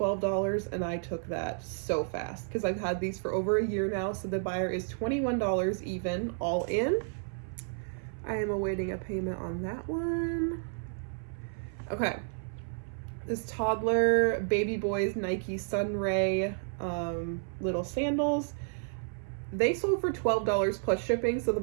and I took that so fast because I've had these for over a year now. So the buyer is $21 even, all in. I am awaiting a payment on that one. Okay. This toddler baby boys Nike Sunray little sandals. They sold for $12 plus shipping. So the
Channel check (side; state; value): left; silent; 57 dB below the other